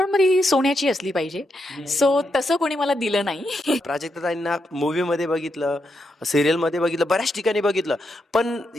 मग ती सोन्याची असली पाहिजे. सो तसं कोणी मला दिलं नाही. प्राजक्ताताईंना मूव्हीमध्ये बघितलं, सिरियलमध्ये बघितलं, बऱ्याच ठिकाणी बघितलं. पण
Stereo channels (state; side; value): normal; both; correlation 0.82